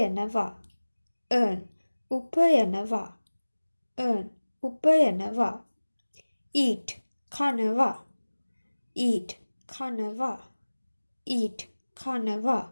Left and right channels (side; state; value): both; inverted; correlation -1.00